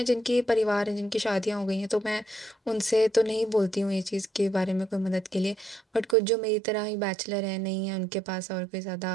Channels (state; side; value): drops out; left; at 6.2 s